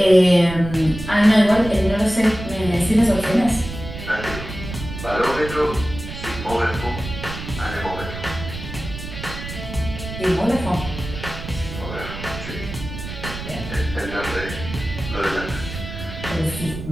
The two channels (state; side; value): noise; right; rumble, 9 dB below the sound